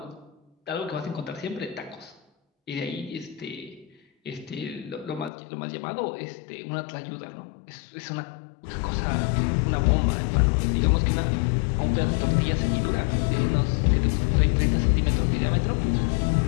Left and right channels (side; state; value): right; drops out; at 5.3 s